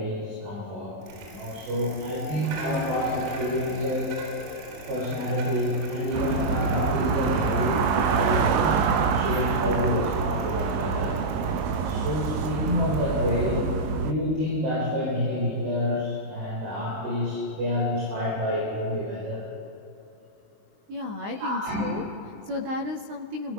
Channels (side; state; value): left; late; 19 ms